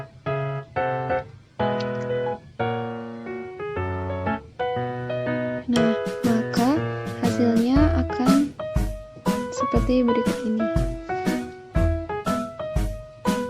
Nah, maka hasilnya akan seperti berikut ini.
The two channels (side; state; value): both; identical; correlation 1.00